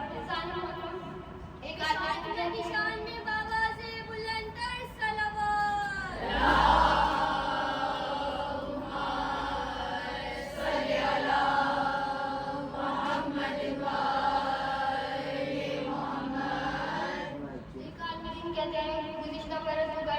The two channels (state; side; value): identical; both; correlation 1.00